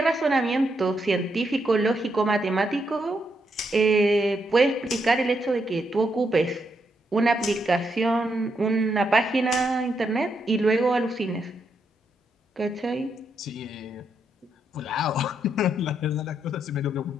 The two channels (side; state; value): both; normal; correlation 0.80